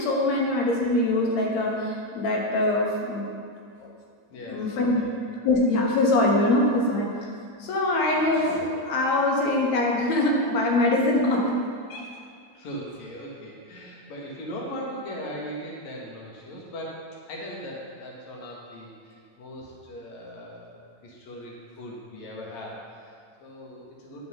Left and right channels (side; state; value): right; late; 8.8 ms